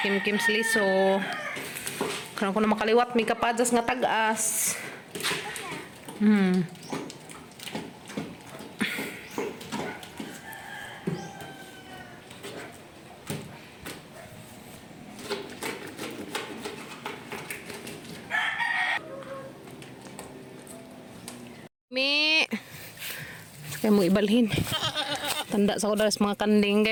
sliso. Karong kunong makaliwat, may kapadas nga tag-as. Mi, kaya mo ibalhin. Tanda sa ko dahil sa mga kanding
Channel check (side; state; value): both; identical; correlation 1.00